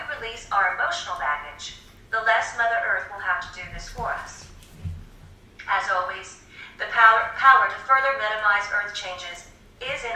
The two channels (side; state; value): both; identical; correlation 1.00